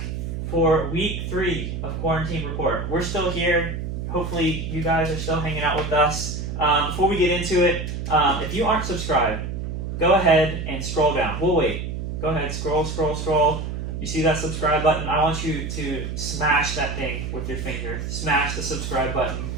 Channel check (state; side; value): noise; right; hum, 5 dB below the sound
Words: for week 3 of QuaranTeam Report. We're still here. Hopefully you guys are still hanging out with us. Before we get into it, if you aren't subscribed, go ahead and scroll down. We'll wait. Go ahead, scroll. You see that subscribe button? I want you to smash that thing with your finger. Smash the subscribe button.